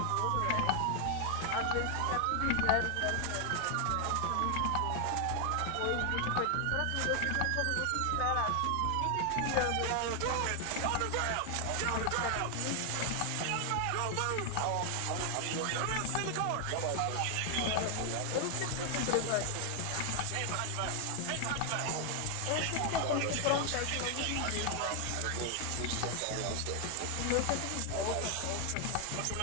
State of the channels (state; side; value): different; both; correlation 0.00